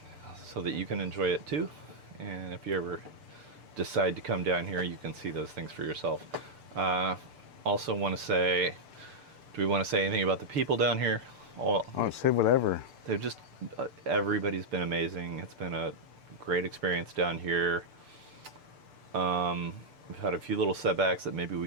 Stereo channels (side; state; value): left; late; 6.8 ms